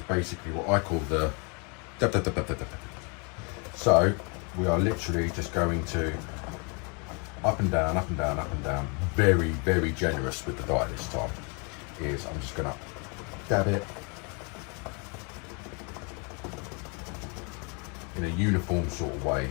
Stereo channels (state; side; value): quieter; right; 34.1 dB